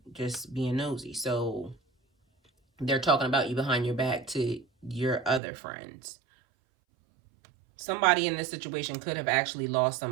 just being nosy. So they're talking about you behind your back to your other friends. Somebody in this situation could have actually lost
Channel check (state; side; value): drops out; left; at 5.4 s